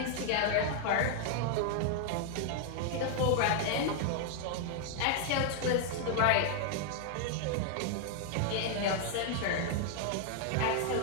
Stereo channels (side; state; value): both; different; correlation 0.00